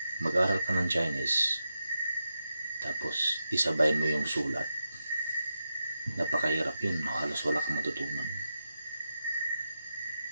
mag-aral ka ng Chinese tapos isabay mo yung sulat, napakahirap yun. Halos wala kang matutunan.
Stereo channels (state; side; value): inverted; both; correlation -0.89